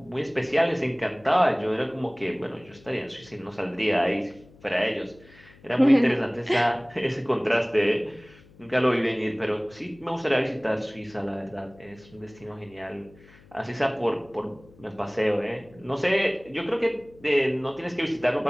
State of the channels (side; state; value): left; noise; hum, 25 dB below the sound